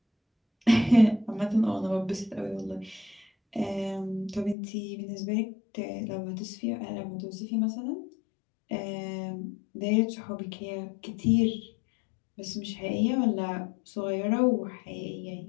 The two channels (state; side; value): drops out; right; at 4.5 s